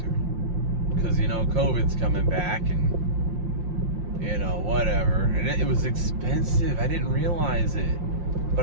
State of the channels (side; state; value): left; late; 5.7 ms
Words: because COVID's coming back, and whatever, and it was expensive. I didn't realize it, but